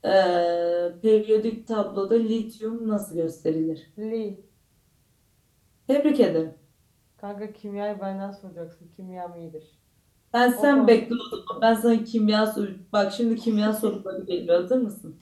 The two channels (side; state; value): both; identical; correlation 1.00